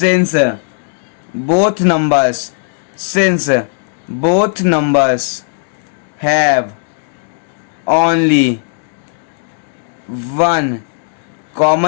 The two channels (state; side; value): silent; right; 66 dB below the other